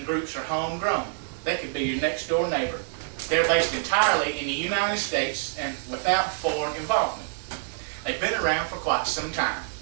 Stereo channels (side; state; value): left; silent; digital silence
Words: groups are homegrown. They could be your next door neighbor. They're based entirely in the United States and without foreign involvement. They've been around for quite some time.